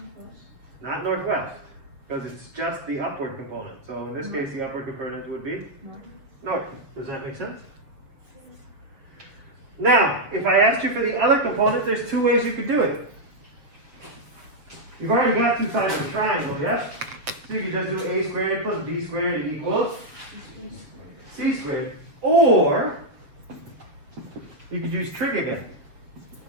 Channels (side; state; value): left; late; 7.1 ms